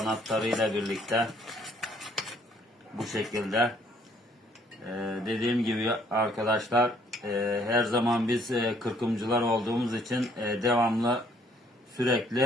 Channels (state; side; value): normal; both; correlation 0.64